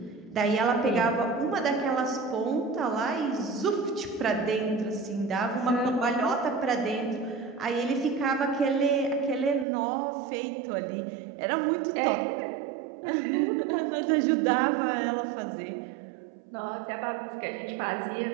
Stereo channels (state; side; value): drops out; left; at 9.7 s